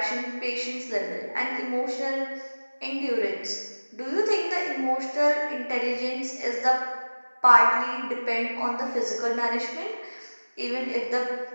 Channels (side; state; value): both; inverted; correlation -1.00